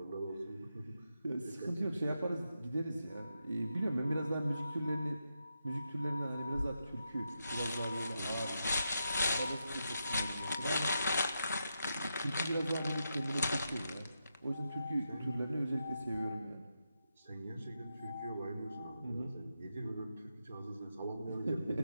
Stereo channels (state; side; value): inverted; both; correlation -0.85